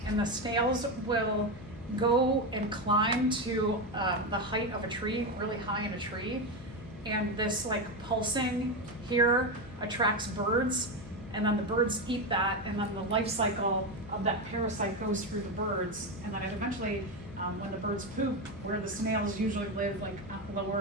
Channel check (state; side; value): noise; left; hum, 16 dB below the sound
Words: and the snails will go and climb to the height of a tree, really high in a tree, and this like pulsing here attracts birds, and then the birds eat that, and then the life cycle of that parasite goes through the birds, and then it eventually, when the birds poop, where the snails usually live, like